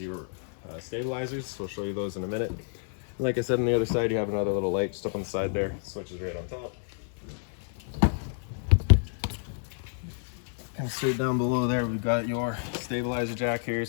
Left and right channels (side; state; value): right; silent; 58 dB below the other